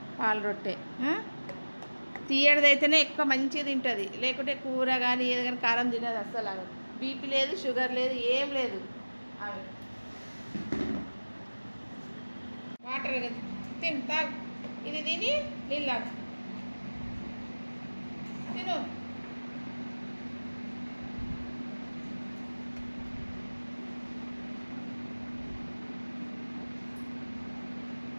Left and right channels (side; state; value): both; inverted; correlation -1.00